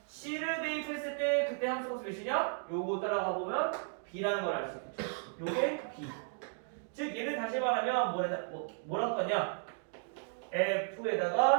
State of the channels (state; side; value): silent; left; 55 dB below the other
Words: c를 대입했을 때 그때 함수 값이 몇이냐? 요거 따라가 보면 b라는 걸 알 수 있겠죠. 요게 b. 즉 얘를 다시 말하면 뭐랄 거냐?